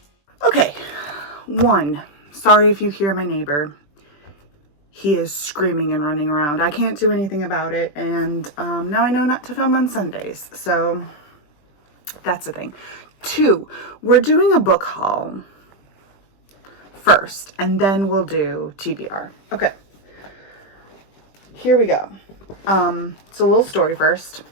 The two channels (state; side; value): late; right; 20 ms